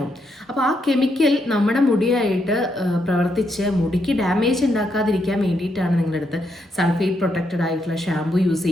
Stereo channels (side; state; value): both; normal; correlation 0.79